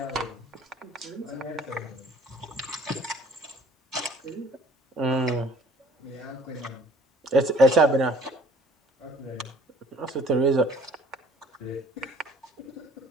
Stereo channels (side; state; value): both; normal; correlation 0.54